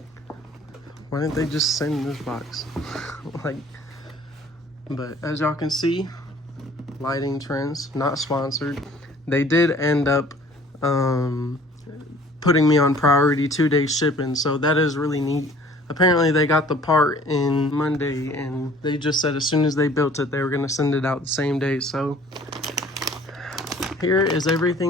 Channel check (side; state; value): both; normal; correlation 0.53